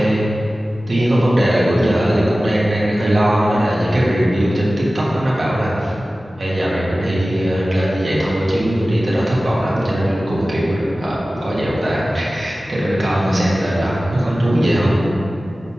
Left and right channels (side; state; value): both; normal; correlation 0.96